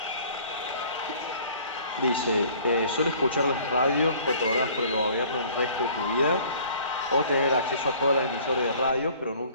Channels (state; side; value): inverted; both; correlation -0.52